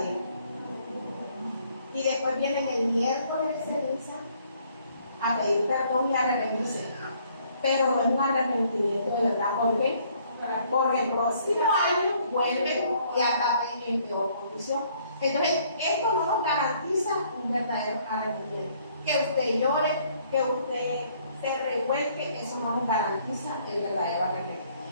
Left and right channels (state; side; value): inverted; both; correlation -0.64